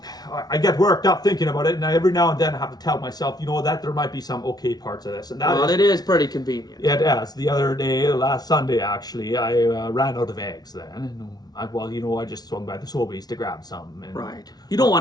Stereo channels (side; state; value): right; late; 0.19 ms